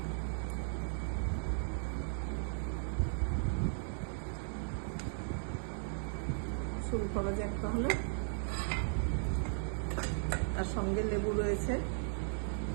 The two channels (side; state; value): left; silent; digital silence